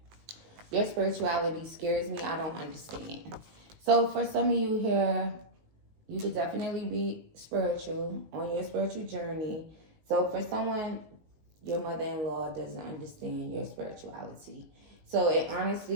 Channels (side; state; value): left; late; 19 ms